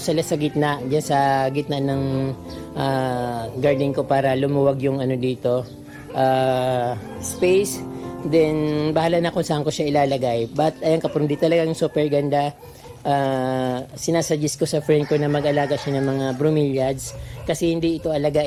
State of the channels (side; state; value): both; identical; correlation 1.00